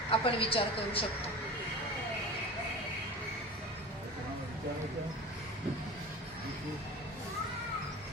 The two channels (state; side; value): normal; both; correlation 0.34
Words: आपण विचार करू शकतो.